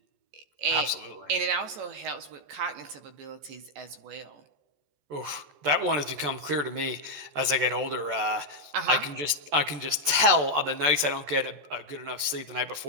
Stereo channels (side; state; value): left; late; 14 ms